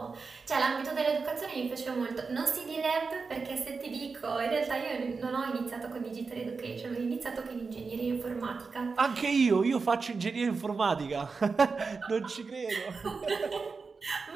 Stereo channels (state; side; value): quieter; left; 4.7 dB